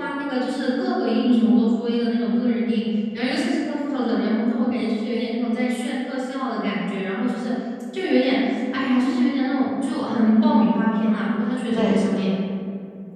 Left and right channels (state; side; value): identical; both; correlation 1.00